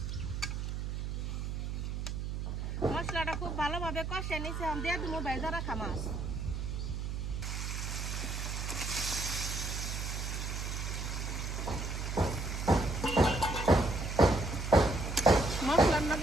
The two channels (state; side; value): noise; right; hum, 3 dB below the sound